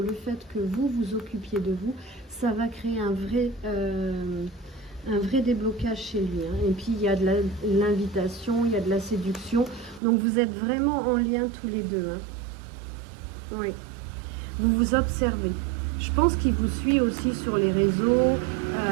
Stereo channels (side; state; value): left; drops out; at 10.0 s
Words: fait que vous vous occupiez de vous, ça va créer un vrai déblocage chez lui, hein. Et puis il y a de l'invitation, il y a de la séduction, donc vous êtes vraiment en lien tous les deux, hein. Oui, vous vous observez. Je pense qu'il vous suit aussi sur les réseaux,